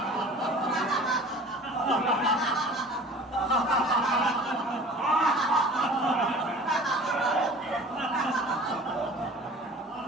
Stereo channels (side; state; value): both; normal; correlation 0.44